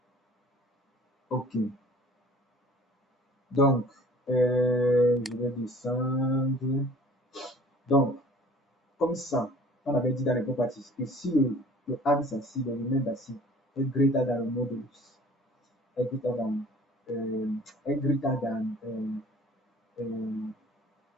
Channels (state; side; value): normal; both; correlation 0.50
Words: Ok. Donc, je vais descendre. Donc, comme ça, on avait dit dans les properties que si le axe assis, le remainder assis est greater than le modulus, est greater than,